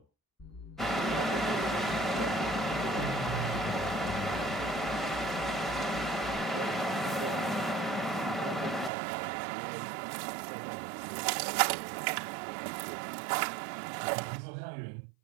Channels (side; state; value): left; drops out; at 8.9 s